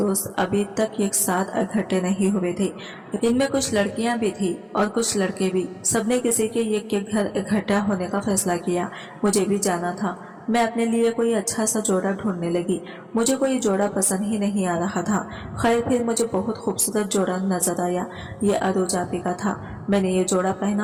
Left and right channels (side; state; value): both; identical; correlation 1.00